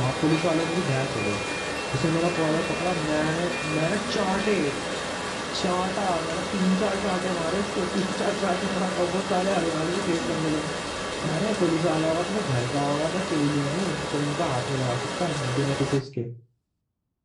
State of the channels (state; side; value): identical; both; correlation 1.00